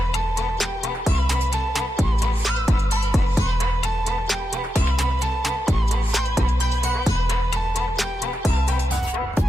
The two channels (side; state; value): both; normal; correlation 0.88